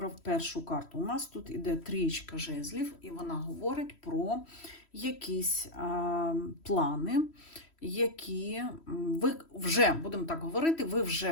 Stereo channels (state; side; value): late; right; 3.1 ms